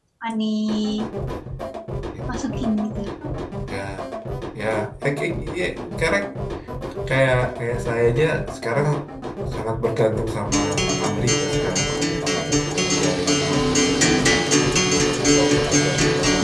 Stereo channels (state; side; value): identical; both; correlation 1.00